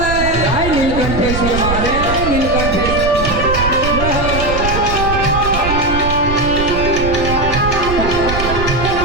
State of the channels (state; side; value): noise; right; rumble, 5 dB below the sound